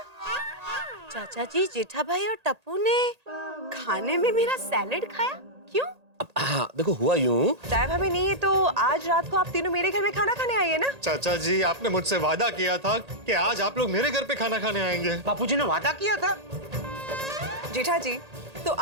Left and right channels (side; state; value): left; late; 1.8 ms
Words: चाचा जी, जेठा भाई और टप्पू ने खाने में मेरा सैलेड खाया? क्यों? हाँ देखो हुआ यूं, दया भाभी नहीं है तो आज रात को आप तीनों मेरे घर में खाना खाने आइए ना। चाचा जी, आपने मुझसे वादा किया था कि आज आप लोग मेरे घर पे खाना खाने आएंगे। बापूजी ने वादा किया था। जेठा जी, तो